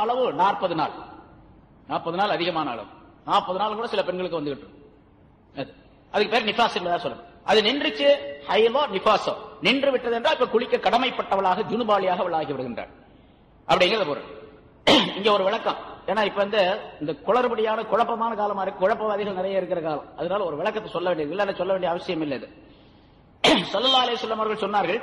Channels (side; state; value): both; identical; correlation 1.00